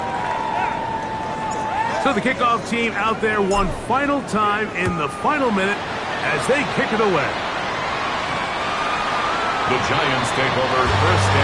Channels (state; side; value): identical; both; correlation 1.00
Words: So the kickoff team out there one final time in the final minute as they kick it away. The Giants take over 1st